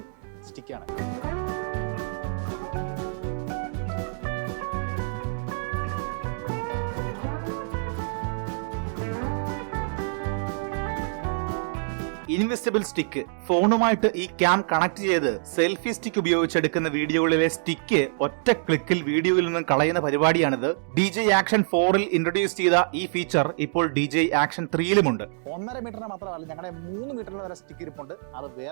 സ്റ്റിക്കാണ്. Invisible stick. ഫോണുമായിട്ട് ഈ ക്യാം കണക്ട് ചെയ്ത് സെൽഫി സ്റ്റിക്ക് ഉപയോഗിച്ചെടുക്കുന്ന വീഡിയോകളിലെ സ്റ്റിക്ക് ഒറ്റ ക്ലിക്കിൽ വീഡിയോയിൽ നിന്നും കളയുന്ന പരിപാടിയാണിത്. DJ ആക്ഷൻ 4-ൽ ഇൻട്രൊഡ്യൂസ് ചെയ്ത ഈ ഫീച്ചർ ഇപ്പോൾ DJ ആക്ഷൻ 3-ലുമുണ്ട്. 1.5 മീറ്ററിന് മാത്രമല്ല, ഞങ്ങളുടെ 3 മീറ്ററിന് വരെ സ്റ്റിക്ക് ഇരിപ്പുണ്ട്. അത്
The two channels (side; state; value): left; silent; digital silence